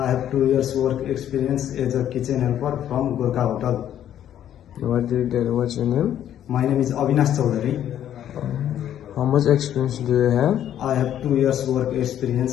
have 2 years work experience as a kitchen helper from Gorkha Hotel. What's your name? My name is Avinash Chaudhary. How much experience do you have? I have 2 years work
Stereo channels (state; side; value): quieter; right; 10.8 dB